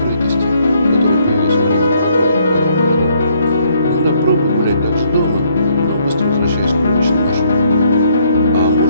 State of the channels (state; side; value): inverted; both; correlation -0.68